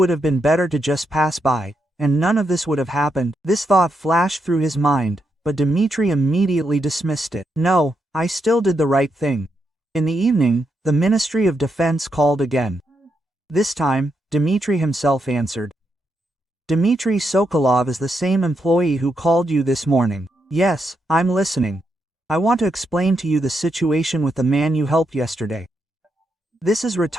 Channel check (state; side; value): normal; both; correlation 0.82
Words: have been better to just pass by, and none of this would have happened. This thought flashed through his mind, but Dimitri immediately dismissed it. No, I still did the right thing. In the evening, the Ministry of Defense called again. This time, Dmitry himself answered. Dmitry Sokolov is the same employee who called you this morning. Yes, I'm listening. I want to explain to you the situation with the man you helped yesterday. This is